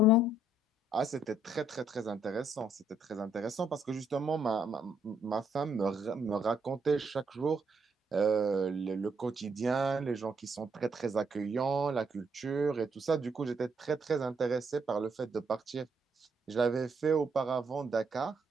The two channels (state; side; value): normal; both; correlation 0.72